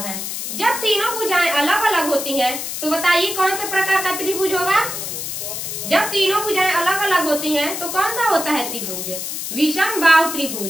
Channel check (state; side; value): noise; left; hiss, 5 dB below the sound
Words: हैं। जब तीनों भुजाएं अलग अलग होती हैं तो बताइए कौन से प्रकार का त्रिभुज होगा? जब तीनों भुजाएं अलग अलग होती हैं तो कौन सा होता है त्रिभुज? विषमबाहु